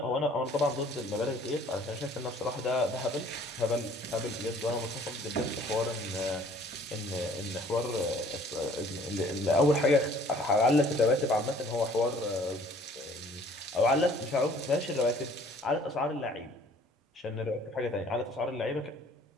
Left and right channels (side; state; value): both; normal; correlation 0.56